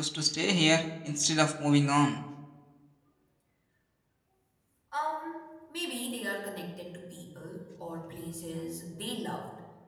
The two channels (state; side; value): identical; both; correlation 1.00